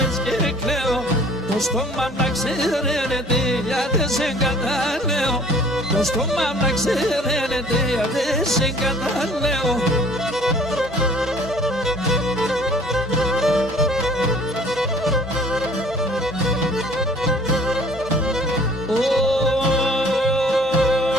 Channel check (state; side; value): normal; both; correlation 0.53